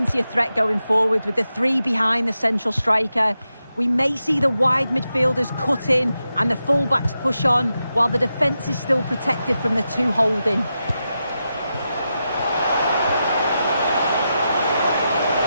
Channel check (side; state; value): both; inverted; correlation -0.89